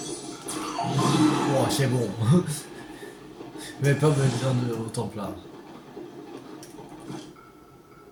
oh, c'est bon. Mais pas besoin de autant plat.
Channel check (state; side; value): identical; both; correlation 1.00